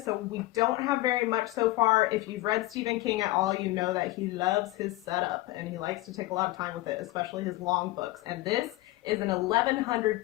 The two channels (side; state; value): right; quieter; 18.6 dB